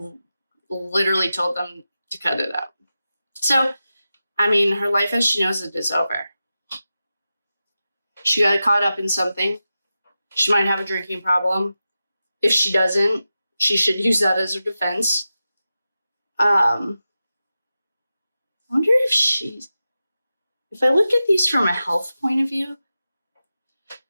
literally told them to cut it out. So, I mean, her life as she knows it is over. She got caught up in something. She might have a drinking problem. If she doesn't, she should use that as her defense. I wonder if I look at these from a health point of view,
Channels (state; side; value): inverted; both; correlation -0.92